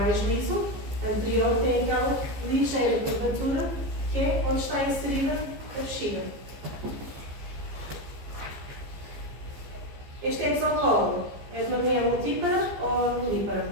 liso, o anterior tem aquela ligeira curvatura que é onde está inserida a bexiga. Este exocolo é de uma mulher multípara ou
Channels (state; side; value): late; left; 15 ms